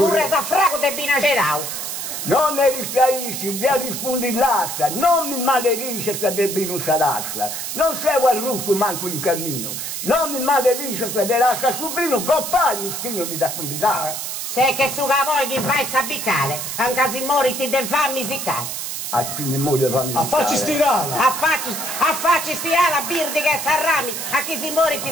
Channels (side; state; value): right; noise; hiss, 5 dB below the sound